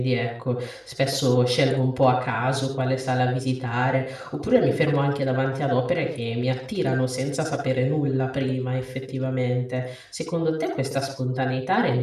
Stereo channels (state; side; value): identical; both; correlation 1.00